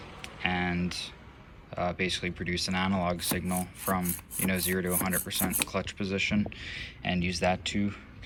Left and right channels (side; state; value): both; identical; correlation 1.00